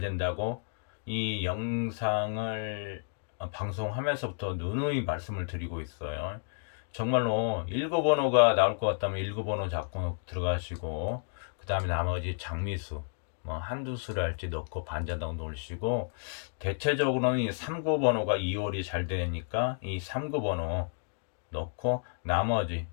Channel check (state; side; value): silent; right; digital silence